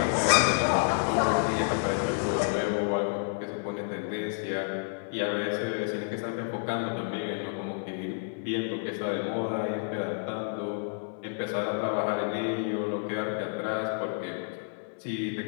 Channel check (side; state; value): right; silent; digital silence